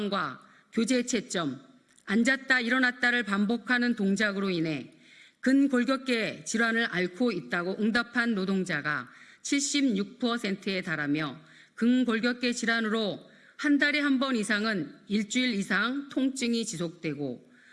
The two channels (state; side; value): identical; both; correlation 1.00